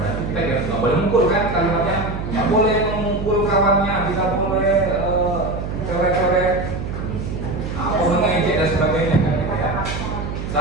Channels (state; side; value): noise; right; hum, 6 dB below the sound